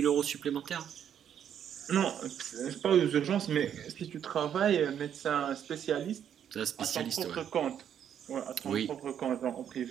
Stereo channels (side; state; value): left; quieter; 9.1 dB